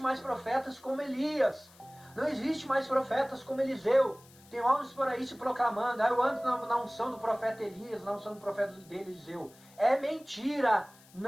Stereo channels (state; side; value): noise; left; hiss, 25 dB below the sound